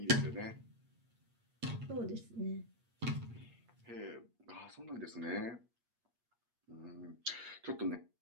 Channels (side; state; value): left; late; 8.5 ms